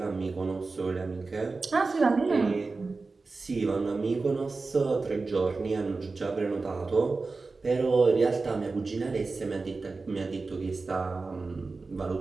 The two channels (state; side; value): quieter; left; 3.9 dB